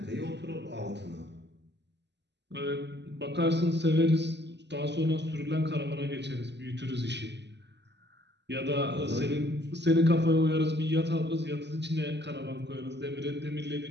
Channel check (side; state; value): left; late; 0.50 ms